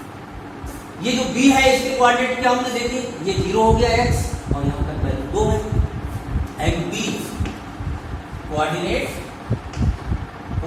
ये जो B है इसके कोऑर्डिनेट क्या हमने देखे, ये 0 हो गया x, और यहाँ तक वैल्यू 2 है। And B coordinate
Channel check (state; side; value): identical; both; correlation 1.00